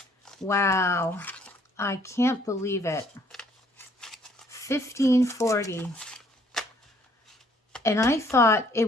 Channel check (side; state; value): both; normal; correlation 0.62